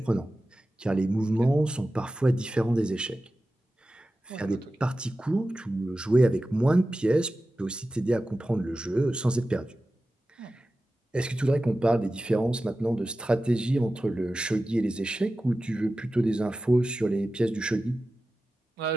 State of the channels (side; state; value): both; normal; correlation 0.94